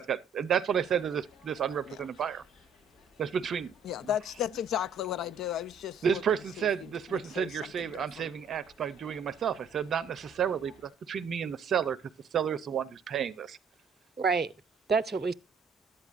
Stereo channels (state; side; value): quieter; left; 4.7 dB